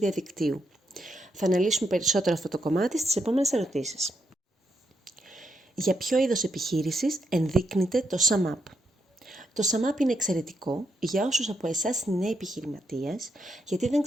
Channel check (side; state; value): both; normal; correlation 0.80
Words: Θα αναλύσουμε περισσότερο αυτό το κομμάτι στις επόμενες ερωτήσεις. Για ποιο είδος επιχείρησης ενδείκνυται το SumUp? Το SumUp είναι εξαιρετικό για όσους από εσάς είναι νέοι επιχειρηματίες, γιατί δεν